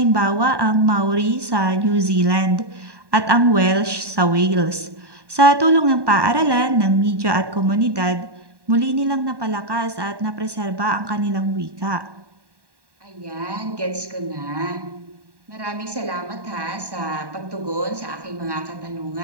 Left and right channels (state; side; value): late; left; 1.1 ms